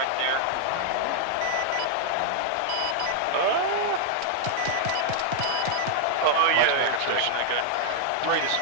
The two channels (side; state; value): both; different; correlation -0.01